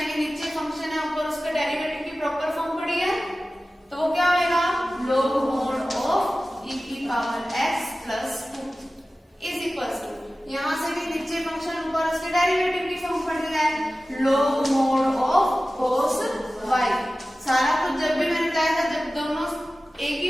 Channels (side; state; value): both; normal; correlation 0.96